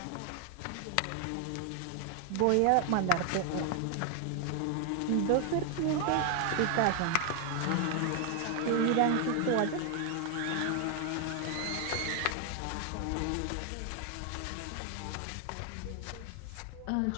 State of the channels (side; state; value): both; different; correlation 0.00